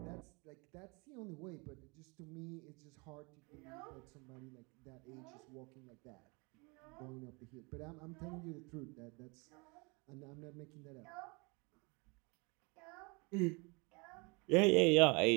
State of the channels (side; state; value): left; quieter; 29.3 dB